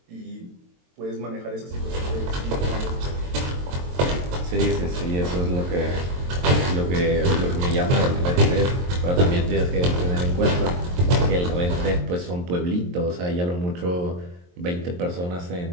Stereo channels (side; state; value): left; late; 23 ms